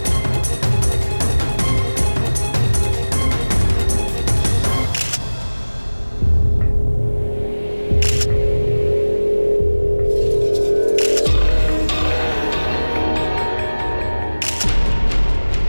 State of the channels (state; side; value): inverted; both; correlation -1.00